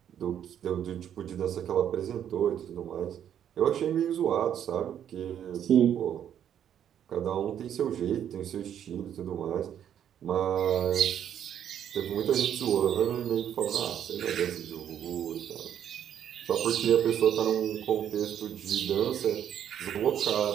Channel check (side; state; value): left; quieter; 9.7 dB